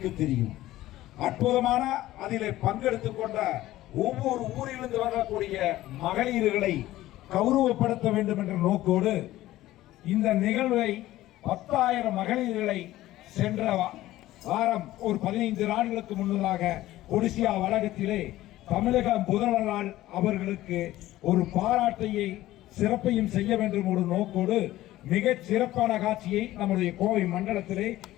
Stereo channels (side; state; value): right; quieter; 15.6 dB